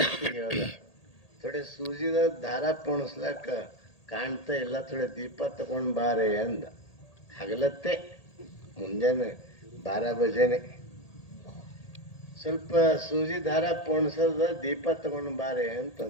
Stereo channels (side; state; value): right; late; 1.8 ms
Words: ಹೇಳ್ದ, ಥೋಡೆ ಸೂಜಿದ ದಾರ ಪೋಣಿಸ್ಲಾಕ ಕಾಣ್ತಾ ಇಲ್ಲ, ಥೋಡೆ ದೀಪ ತಗೊಂಡು ಬಾರೆ ಅಂದ. ಹಗಲತ್ತೆ ಮುಂಜಾನೆ 12 ಬಜೆನೆ ಸ್ವಲ್ಪ ಸೂಜಿ ದಾರ ಪೋಣಿಸದ ದೀಪ ತಗೊಂಡು ಬಾರೆ